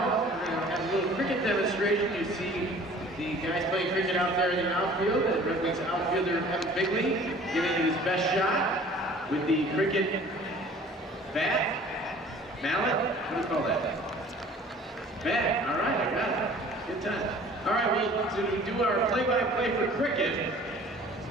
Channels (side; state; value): both; normal; correlation 0.49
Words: we're going to have a little cricket demonstration. You see the guys playing cricket out there in the outfield. The Red Wings outfielder, Evan Bigley, giving it his best shot with the cricket bat, mallet. What do you call that? Bat. All right, I got it. Good time. All right, well, to do our play-by-play for cricket,